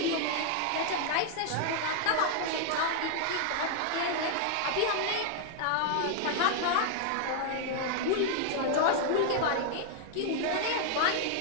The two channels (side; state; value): both; different; correlation 0.00